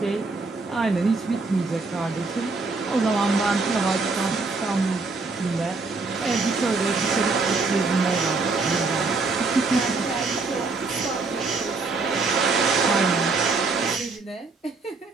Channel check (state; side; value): quieter; left; 3.9 dB